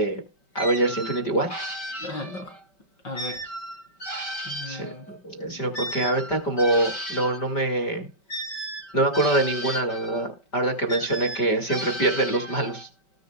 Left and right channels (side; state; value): right; late; 5.2 ms